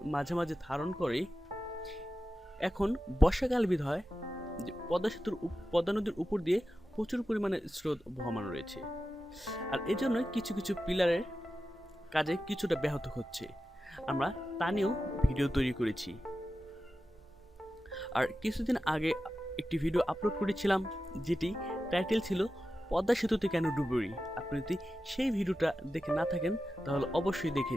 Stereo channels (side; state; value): both; normal; correlation 0.92